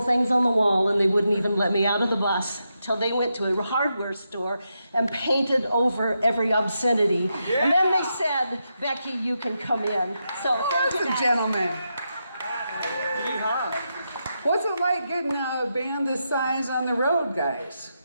things on the wall, and they wouldn't even let me out of the bus till they went to a hardware store and painted over every obscenity. Yeah. And then they said, "Becky, you can come in." So that's a gentleman. Yeehaw. What's it like getting a band this size on the road, guys?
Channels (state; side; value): inverted; both; correlation -0.85